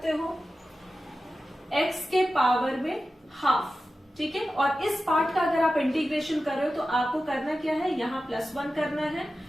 हो, एक्स के पावर में हाफ, ठीक है। और इस पार्ट का अगर आप इंटीग्रेशन कर रहे हो तो आपको करना क्या है, यहां +1 करना है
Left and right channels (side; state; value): both; normal; correlation 0.93